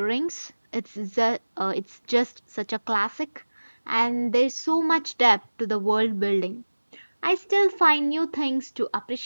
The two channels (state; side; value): inverted; both; correlation -1.00